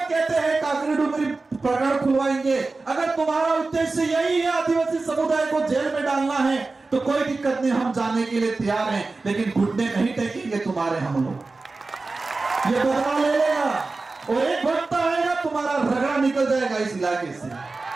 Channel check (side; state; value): left; quieter; 3.6 dB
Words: कहते हैं काकरी डुमरी प्रकरण खुलवाएंगे। अगर तुम्हारा उद्देश्य यही है आदिवासी समुदाय को जेल में डालना है, तो कोई दिक्कत नहीं, हम जाने के लिए तैयार हैं, लेकिन घुटने नहीं टेकेंगे तुम्हारे। हम लोग ये बदला ले लेगा, और एक वक्त आएगा तुम्हारा रगड़ा निकल जाएगा इस इलाके से,